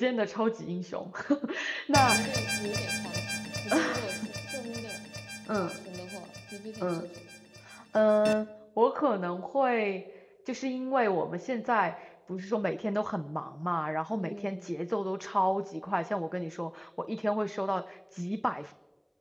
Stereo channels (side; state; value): both; identical; correlation 1.00